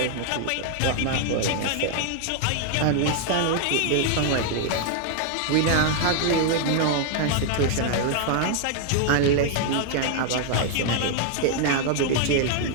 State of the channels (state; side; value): different; both; correlation 0.00